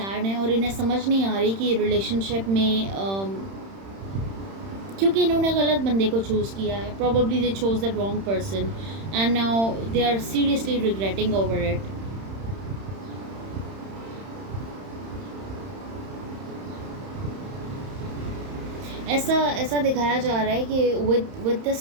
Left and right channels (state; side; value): late; left; 31 ms